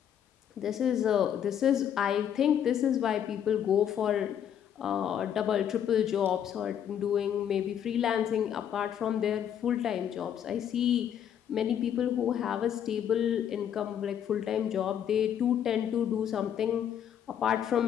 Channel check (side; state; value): right; quieter; 9.3 dB